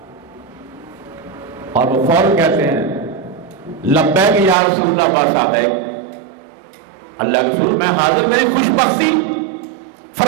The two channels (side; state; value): left; drops out; at 4.5 s